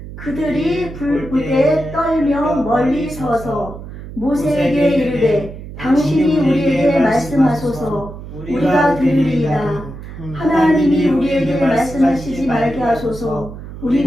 그들이 불부대 떨며 멀리 서서 모세에게 이르되 당신이 우리에게 말씀하소서 우리가 들으리이다. 하나님이 우리에게 말씀하시지 말게 하소서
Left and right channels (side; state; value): right; noise; hum, 12 dB below the sound